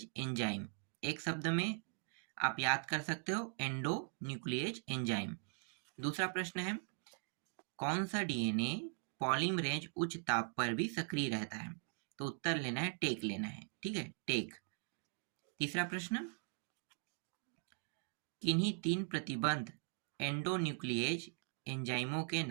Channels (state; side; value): silent; left; 51 dB below the other